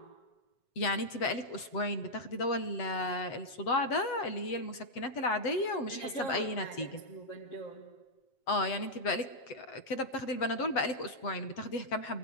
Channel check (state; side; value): late; right; 7.5 ms